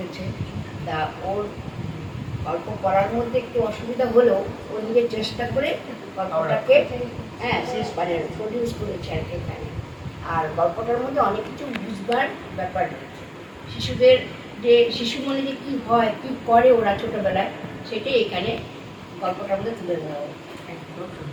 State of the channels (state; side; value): identical; both; correlation 1.00